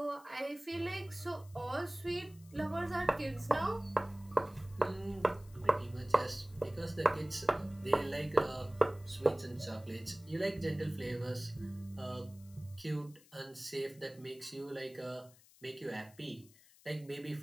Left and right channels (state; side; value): noise; left; hiss, 25 dB below the sound